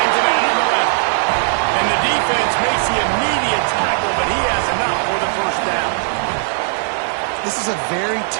it out on the left. And the defense makes the immediate tackle, but he has enough for the first down. This is a very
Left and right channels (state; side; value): silent; left; digital silence